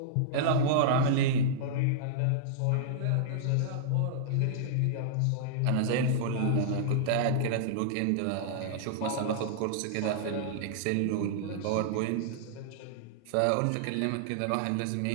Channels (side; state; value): both; different; correlation -0.02